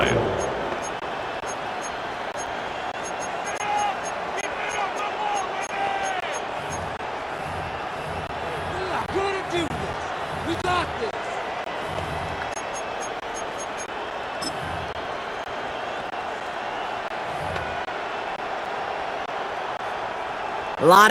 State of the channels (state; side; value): identical; both; correlation 1.00